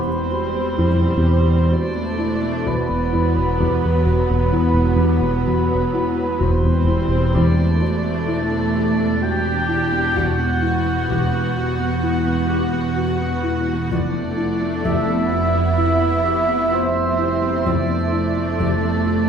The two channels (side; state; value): both; normal; correlation 0.70